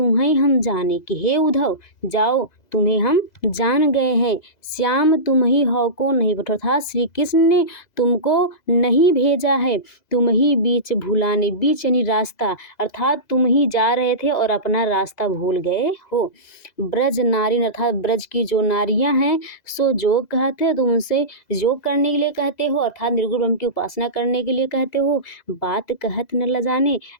हम जाने, कि हे उद्धव जाओ तुम्हें हम जान गए हैं। श्याम तुम ही हो को नहीं बटो, अर्थात श्री कृष्ण ने तुमको नहीं भेजा है, तुम ही बीच भूलाने, बीच यानी रास्ता, अर्थात तुम ही जा रहे थे और अपना रास्ता भूल गए हो। ब्रज नारी, अर्थात ब्रज की जो नारियां हैं, सो योग कहते, तुम उनसे योग करने के लिए कहते हो, अर्थात निर्गुण ब्रह्म की उपासना करने के लिए कहते हो। बात कहत न लजाने,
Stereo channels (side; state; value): right; late; 2.0 ms